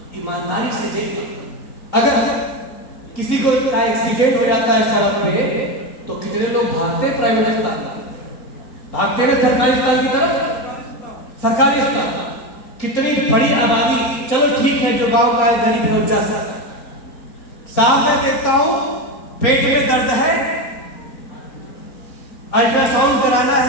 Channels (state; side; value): late; right; 3.9 ms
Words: ईमानदारी से देखो, अगर किसी को एक्सीडेंट हो जाता है सड़क पे, तो कितने लोग भागते हैं प्राइवेट अस्पताल, भागते हैं सरकारी अस्पताल की तरफ। सरकारी अस्पताल कितनी बड़ी आबादी, चलो ठीक है, जो गांव का है, गरीब है, जा सकता। साहब मैं देखता हूं पेट में दर्द है, अल्ट्रासाउंड कराना